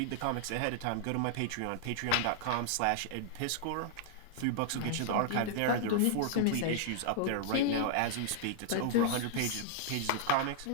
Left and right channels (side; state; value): both; different; correlation -0.01